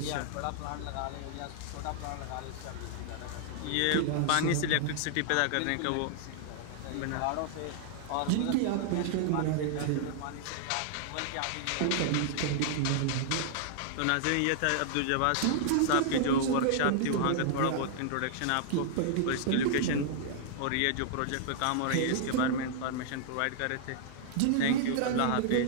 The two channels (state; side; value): different; both; correlation -0.01